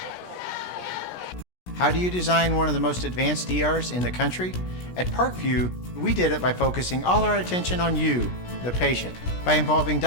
How do you design one of the most advanced ERs in the country? At Parkview, we did it by focusing all our attention on you, the patient, by involving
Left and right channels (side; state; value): right; late; 17 ms